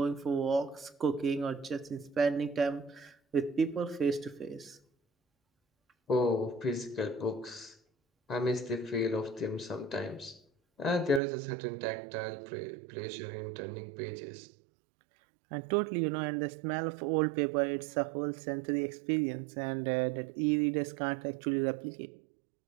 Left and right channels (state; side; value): drops out; left; at 11.2 s